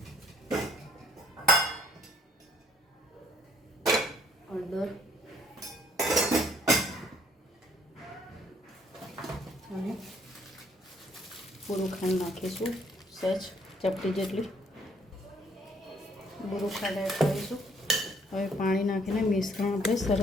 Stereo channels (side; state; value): both; normal; correlation 0.63